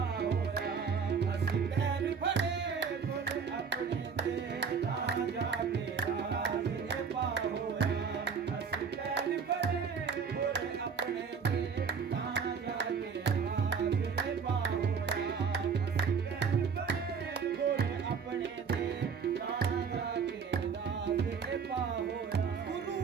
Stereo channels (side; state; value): left; quieter; 6.0 dB